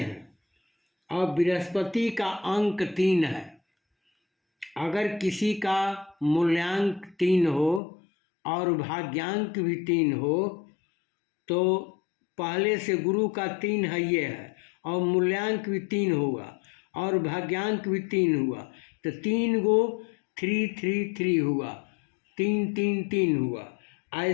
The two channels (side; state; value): right; drops out; at 7.8 s